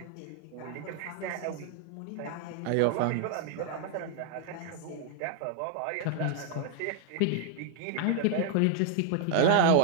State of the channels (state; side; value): different; both; correlation 0.00